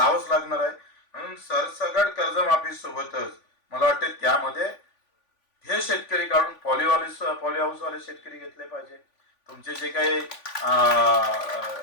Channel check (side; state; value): right; late; 3.5 ms